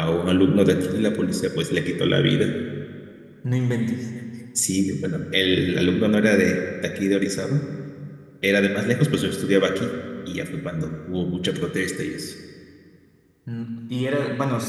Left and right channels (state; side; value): identical; both; correlation 1.00